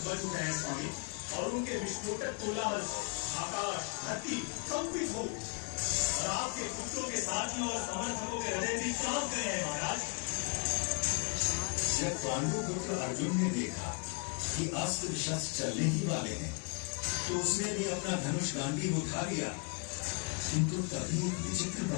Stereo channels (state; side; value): quieter; right; 35.2 dB